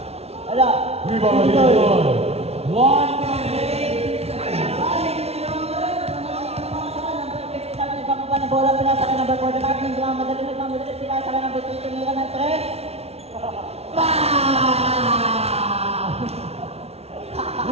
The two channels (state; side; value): late; left; 0.30 ms